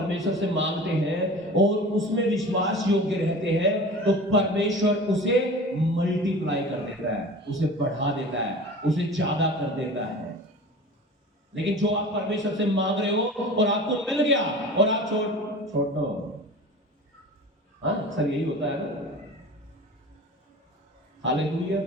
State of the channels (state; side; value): normal; both; correlation 0.38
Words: से मांगते हैं और उसमें विश्वास योग्य रहते हैं, तो परमेश्वर उसे मल्टीप्लाई कर देता है, उसे बढ़ा देता है, उसे ज्यादा कर देता है। लेकिन जो आप परमेश्वर से मांग रहे हो और आपको मिल गया और आप छोड़ दो, हाँ, अक्सर यही होता है ना। Hallelujah,